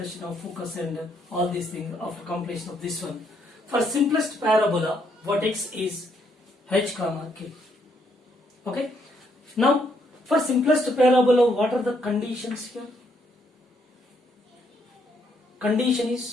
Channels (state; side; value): normal; both; correlation 0.72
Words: of focus and all these things after completion of this one. For simplest parabola, vertex is h comma k. Okay. Now, for simplest parabola, what are the conditions here? Condition